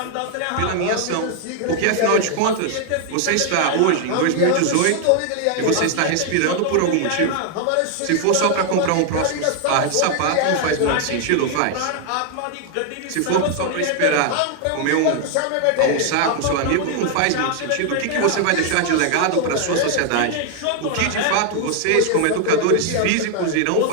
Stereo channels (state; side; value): different; both; correlation 0.00